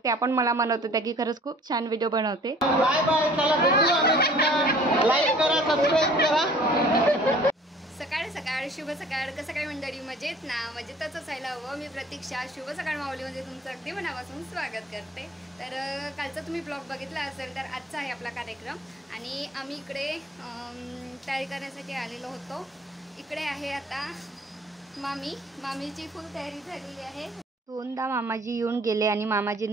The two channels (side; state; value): both; normal; correlation 0.51